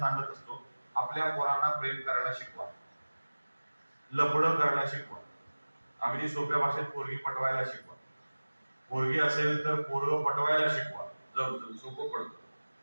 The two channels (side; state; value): both; inverted; correlation -1.00